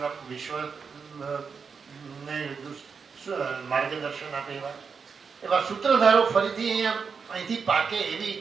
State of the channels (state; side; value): quieter; left; 5.7 dB